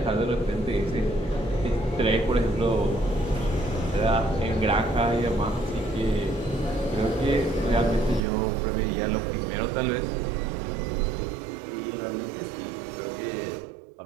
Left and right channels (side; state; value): left; drops out; at 8.2 s